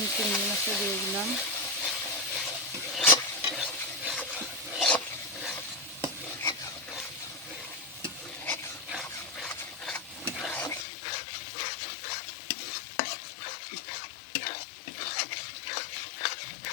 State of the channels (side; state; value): right; drops out; at 10.9 s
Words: চিংড়ি মাছটা দিয়ে দিলাম।